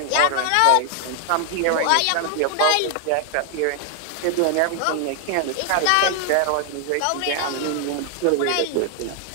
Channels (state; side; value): different; both; correlation 0.00